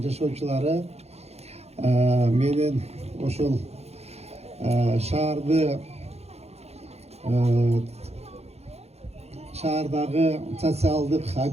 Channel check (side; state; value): left; late; 0.31 ms